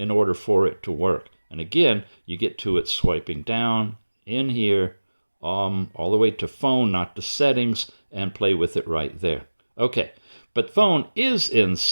order for it to work. And again, you get to it swiping down in here, all the way to phone, not to settings, and play with it right there. Okay. But phone is in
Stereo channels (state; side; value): inverted; both; correlation -1.00